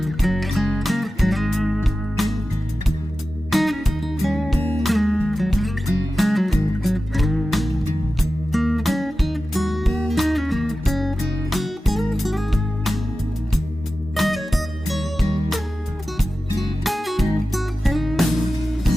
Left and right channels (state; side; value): normal; both; correlation 0.94